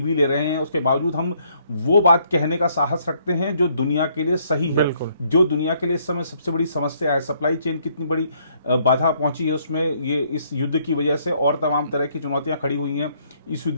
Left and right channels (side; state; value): both; inverted; correlation -0.68